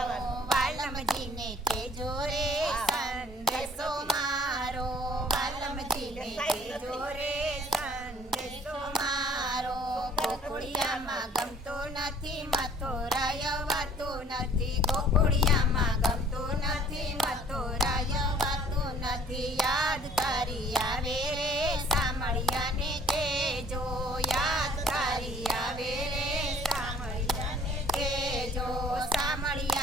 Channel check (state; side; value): normal; both; correlation 0.55